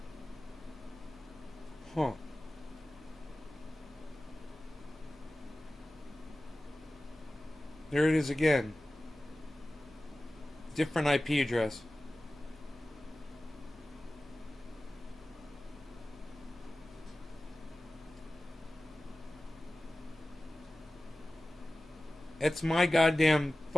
Huh. There it is again. Different IP address. It's my goddamn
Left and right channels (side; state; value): both; normal; correlation 0.96